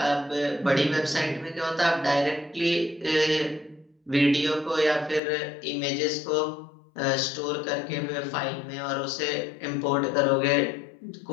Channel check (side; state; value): right; drops out; at 5.2 s